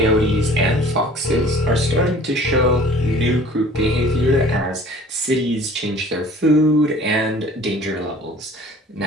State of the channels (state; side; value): normal; both; correlation 0.49